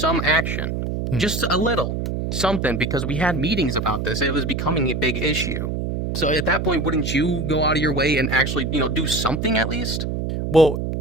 action, just a little something, because we had meetings about this. It was becoming a big issue. So at that point, wouldn't you go out of your way and actually, do something at least? Well,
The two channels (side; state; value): right; noise; hum, 2 dB below the sound